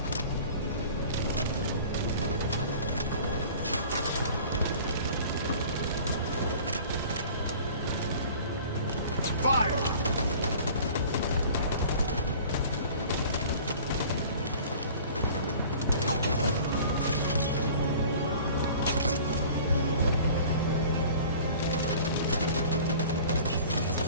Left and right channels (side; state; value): both; inverted; correlation -0.45